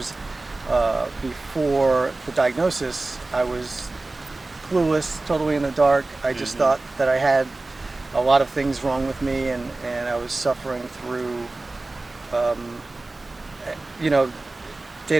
before the diagnosis, I was clueless, totally in the dark. I just thought that I had a lot of things wrong with me, and I was suffering through, day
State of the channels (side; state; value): left; quieter; 3.1 dB